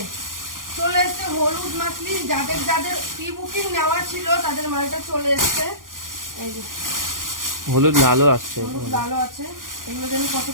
চলে এসছে হলুদ মাসলিন, যাদের যাদের প্রি বুকিং নেওয়া ছিল তাদের মালটা চলে এসছে। এই যে হলুদ লালও আসছে, হলুদ লালও আছে। এগুলো যেন কত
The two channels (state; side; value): late; left; 0.90 ms